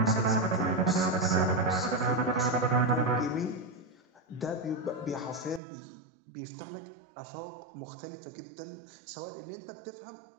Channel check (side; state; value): left; drops out; at 5.6 s